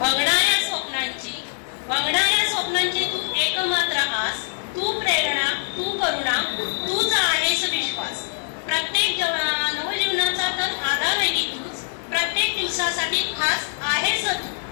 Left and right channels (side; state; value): right; silent; digital silence